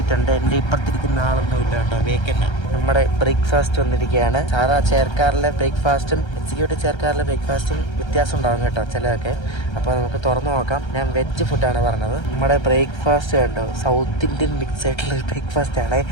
ഉണ്ട്. എൻ്റെ ഇപ്പുറത്തിരിക്കുന്ന ആളൊന്നും ഇല്ല കേട്ടോ, വേക്കൻ്റ്. നമ്മുടെ ബ്രേക്ക്ഫാസ്റ്റ് വന്നിരിക്കുകയാണ്. സാധാ ചെയർക്കാറിലെ ബ്രേക്ക്ഫാസ്റ്റും എക്സിക്യൂട്ടീവ് ചെയർക്കാറിലെ ബ്രേക്ക്ഫാസ്റ്റും വ്യത്യാസം ഉണ്ടാകും കേട്ടോ ചിലതൊക്കെ. അപ്പോൾ നമുക്ക് തുറന്നു നോക്കാം. ഞാൻ വെജ് ഫുഡാണ് പറഞ്ഞത്. നമ്മുടെ ബ്രേക്ക്ഫാസ്റ്റ് കണ്ടോ, സൗത്ത് ഇന്ത്യൻ മിക്സ് ആയിട്ടുള്ള ബ്രേക്ക്ഫാസ്റ്റ് ആണ്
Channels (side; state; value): right; late; 1.3 ms